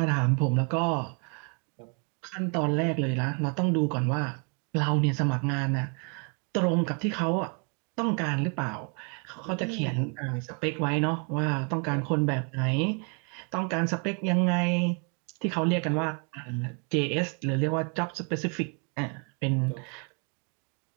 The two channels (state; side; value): quieter; left; 37.5 dB